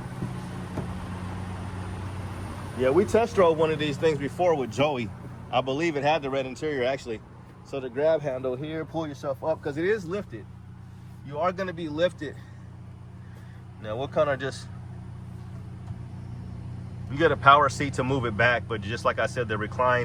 Yeah, we test drove one of these things before with Joey. I believe it had the red interior, actually. So the grab handle here, pull yourself up, because it is lifted. You are going to be lifted. Now we'll kind of just, you get a power seat to move it back, but just like I said, the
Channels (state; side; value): identical; both; correlation 1.00